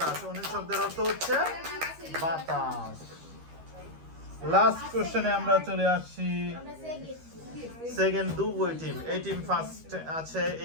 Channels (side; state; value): left; late; 13 ms